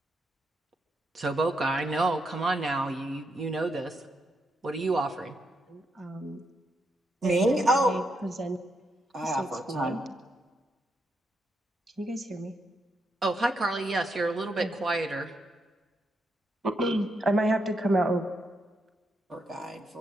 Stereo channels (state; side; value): normal; both; correlation 0.81